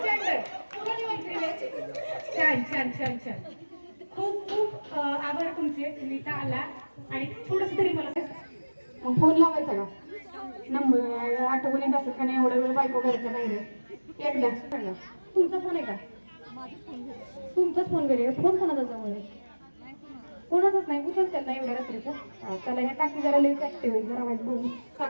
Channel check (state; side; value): inverted; both; correlation -1.00